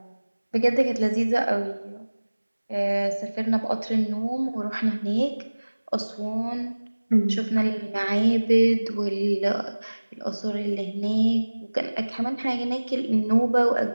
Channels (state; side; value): inverted; both; correlation -1.00